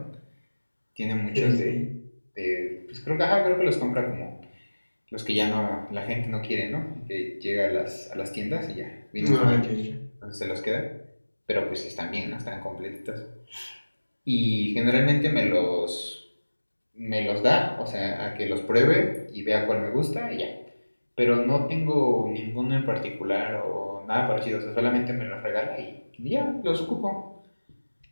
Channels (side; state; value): both; inverted; correlation -1.00